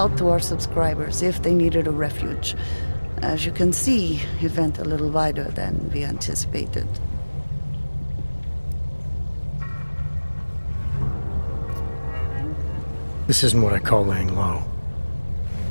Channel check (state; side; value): inverted; both; correlation -1.00